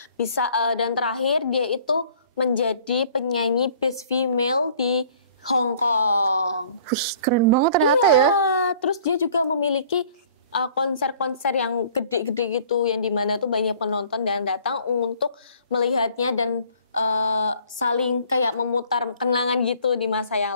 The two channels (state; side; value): inverted; both; correlation -0.53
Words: Dan terakhir dia itu menjadi penyanyi Best Female di Hong Kong. Wih, keren banget ternyata ya. Terus dia juga memiliki konser-konser yang gede-gede gitu, yang dimana tuh banyak penonton dan datang untuk melihatnya dan saling kayak memutar kenangan gitu di masa